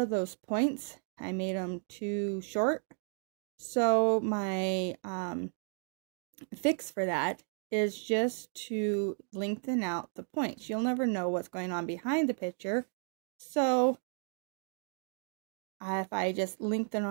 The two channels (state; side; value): silent; left; 55 dB below the other